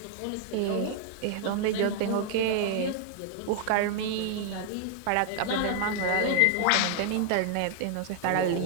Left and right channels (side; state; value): both; different; correlation 0.00